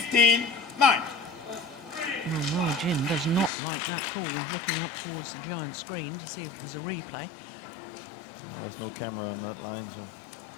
Well, Ma Jin does not like that call, looking up towards the giant screen to see if there's a replay. Well, there's no camera on that line, so...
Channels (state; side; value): drops out; right; at 3.5 s